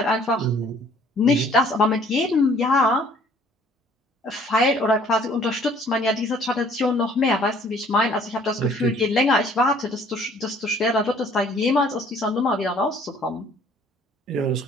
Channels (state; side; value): normal; both; correlation 0.57